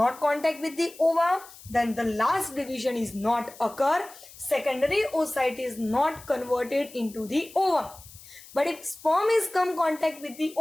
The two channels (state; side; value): noise; left; hiss, 19 dB below the sound